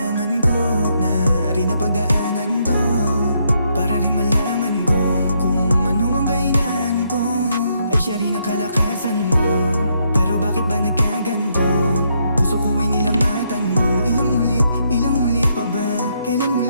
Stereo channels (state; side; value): inverted; both; correlation -0.75